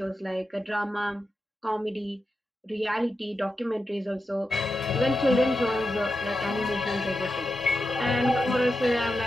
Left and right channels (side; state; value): both; normal; correlation 0.90